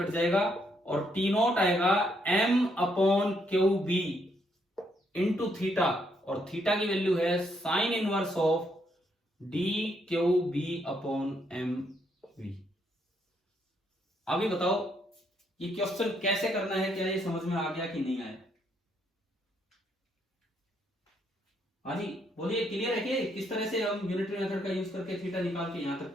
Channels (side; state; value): both; normal; correlation 0.74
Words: जाएगा, और टी नॉट आएगा M upon Q B into theta, और थीटा की वैल्यू है sine inverse of D Q B upon M V. अभी बताओ ये क्वेश्चन कैसे करना है, क्या ये समझ में आ गया कि नहीं आया? हाँ जी बोलिए, क्लियर है कि किस तरह से हम यूनिटरी मेथड का यूज करके थीटा निकाल के यहां तक